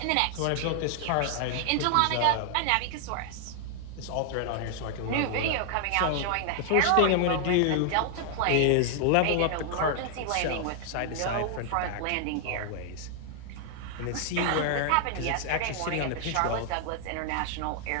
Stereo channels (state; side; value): different; both; correlation 0.00